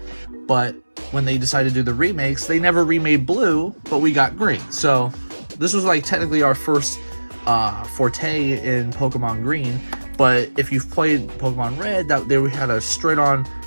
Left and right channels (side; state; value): both; inverted; correlation -1.00